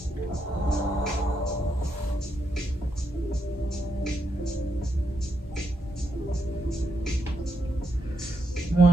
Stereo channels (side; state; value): both; normal; correlation 0.81